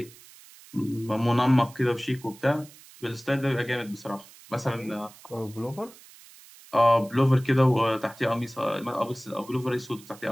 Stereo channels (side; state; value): right; noise; hiss, 22 dB below the sound